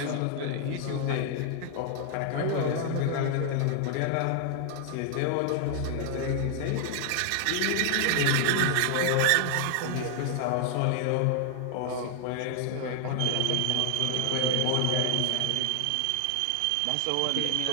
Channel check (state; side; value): different; both; correlation 0.00